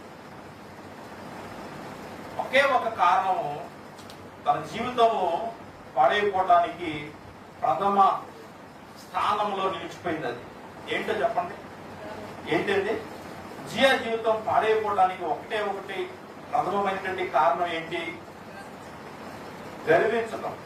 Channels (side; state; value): both; identical; correlation 1.00